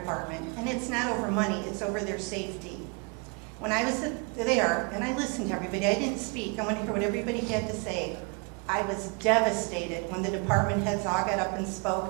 and it's not over money, it's over their safety. When I was there, and I listened to everybody, I didn't speak, I wanted to hear what everybody had to say. I was devastated when the department heads all got up and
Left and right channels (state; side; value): quieter; left; 32.0 dB